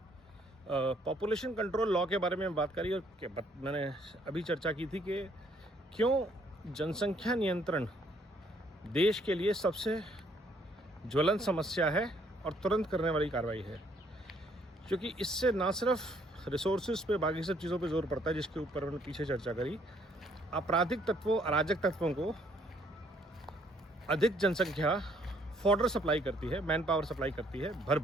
पॉपुलेशन कंट्रोल लॉ के बारे में बात करी और मैंने अभी चर्चा की थी कि क्यों जनसंख्या नियंत्रण देश के लिए सबसे ज्वलंत समस्या है और तुरंत करने वाली कार्रवाई है, क्योंकि इससे ना सिर्फ रिसोर्सेज पे बाकी सब चीज़ों पे जोर पड़ता है जिसके ऊपर मैंने पीछे चर्चा करी। आपराधिक तत्वों, अराजक तत्वों को अधिक जनसंख्या फॉडर सप्लाई करती है, मैन पावर सप्लाई करती है भर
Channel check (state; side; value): normal; both; correlation 0.66